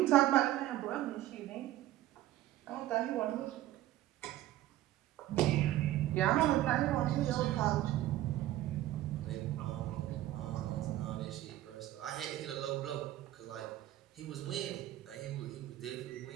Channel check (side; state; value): left; quieter; 14.5 dB